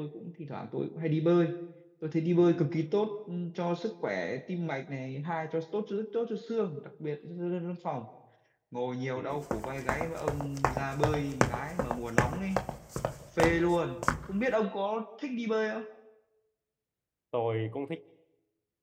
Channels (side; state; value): both; identical; correlation 1.00